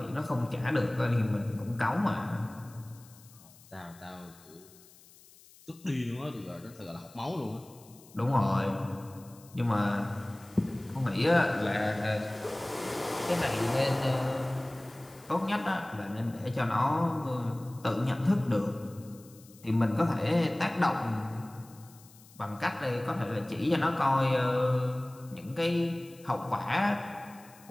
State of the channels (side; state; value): left; noise; hiss, 24 dB below the sound